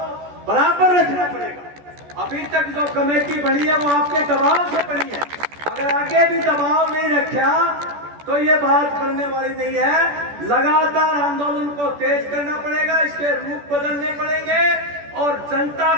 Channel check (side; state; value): left; late; 14 ms